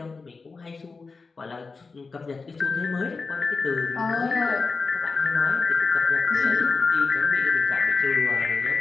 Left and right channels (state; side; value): quieter; right; 4.3 dB